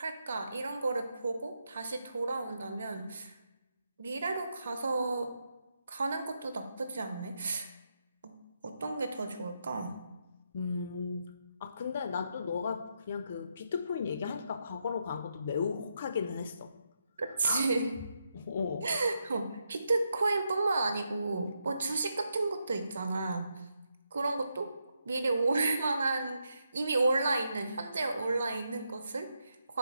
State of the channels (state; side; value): inverted; both; correlation -0.82